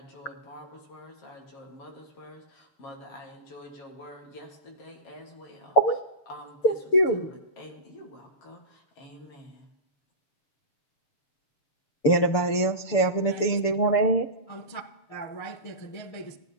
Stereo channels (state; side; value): late; right; 6.9 ms